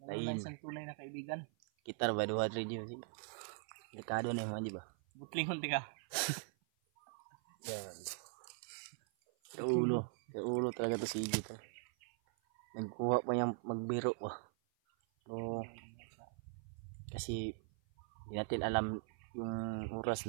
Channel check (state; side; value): silent; left; 50 dB below the other